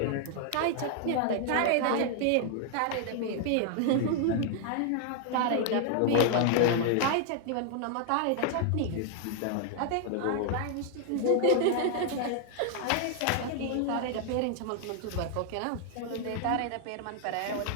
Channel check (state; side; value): different; both; correlation 0.00